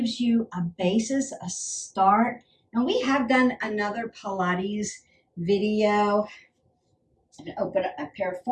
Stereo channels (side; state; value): both; identical; correlation 1.00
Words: you a basis, a start. And we have done another Pilates video. And open up